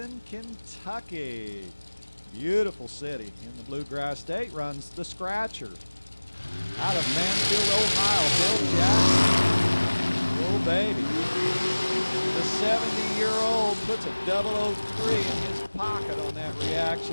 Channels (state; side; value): inverted; both; correlation -1.00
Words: Kentucky. Beautiful city in the Bluegrass State, runs the Scratcher. Out of Mansfield, Ohio, Bill Jackson. Oh, baby. The 70-year-old puts a 003 in his pocket on that